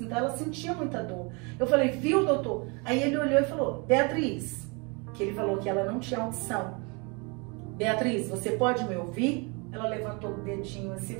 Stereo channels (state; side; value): quieter; left; 30.8 dB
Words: Então ela sentia muita dor. Eu falei, viu, doutor? Aí ele olhou e falou, Beatriz, que ele falou que ela não tinha audição. Beatriz, você pode me ouvir? Ela levantou o dedinho assim,